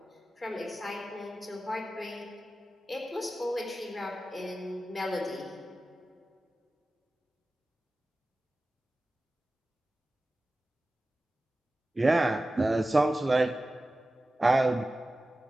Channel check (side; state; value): both; normal; correlation 0.95